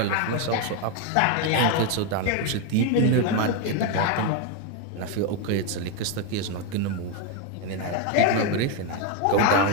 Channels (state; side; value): different; both; correlation 0.02